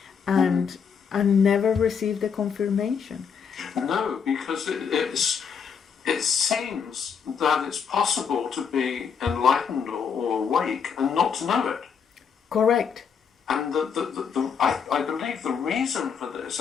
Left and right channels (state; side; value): quieter; right; 6.7 dB